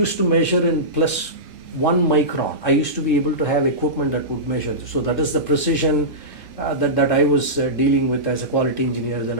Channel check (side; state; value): both; normal; correlation -0.18